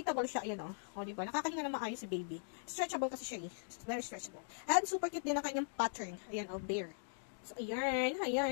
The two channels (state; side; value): silent; right; digital silence